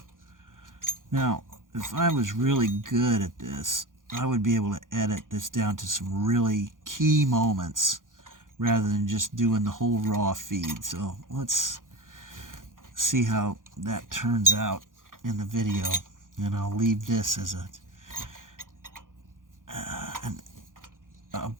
Now, if I was really good at this, I would be able to edit this down to some really key moments rather than just doing the whole raw feed. So let's see how that turns out in the video. And I'll leave this as a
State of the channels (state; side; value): late; left; 0.89 ms